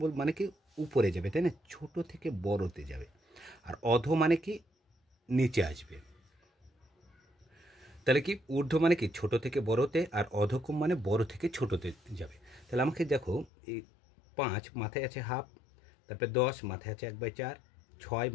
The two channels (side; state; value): right; drops out; at 13.5 s